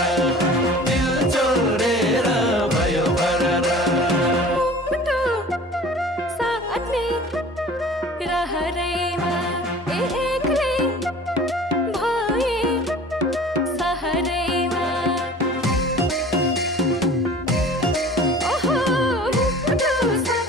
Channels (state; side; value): normal; both; correlation 0.44